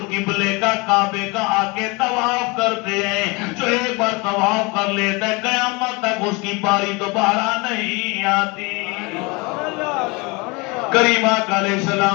قبلے کا کعبے کا آ کے طواف کرتے ہیں. جو ایک بار طواف کر لیتا ہے قیامت تک اس کی باری دوبارہ نہیں آتی. کریم آقا علیہ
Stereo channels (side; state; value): right; quieter; 26.9 dB